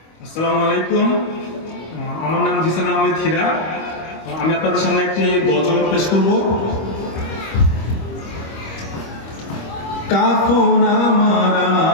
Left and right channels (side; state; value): right; late; 25 ms